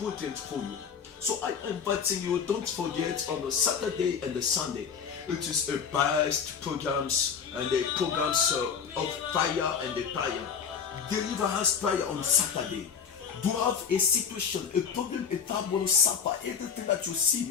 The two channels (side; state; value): right; quieter; 6.8 dB